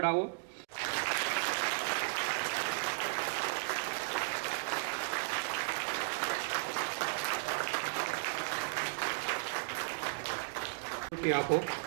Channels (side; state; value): left; silent; digital silence